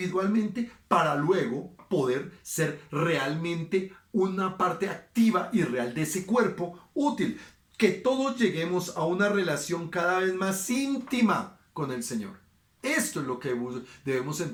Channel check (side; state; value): both; identical; correlation 1.00